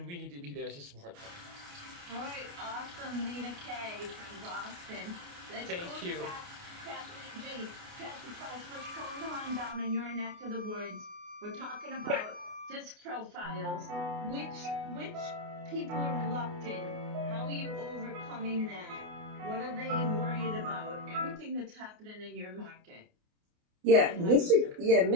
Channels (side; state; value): left; late; 28 ms